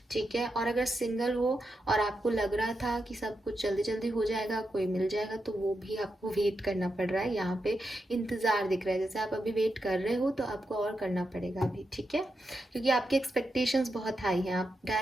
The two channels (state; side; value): normal; both; correlation 0.86